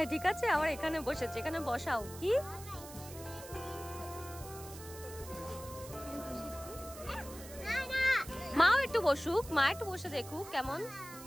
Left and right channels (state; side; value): noise; right; hiss, 15 dB below the sound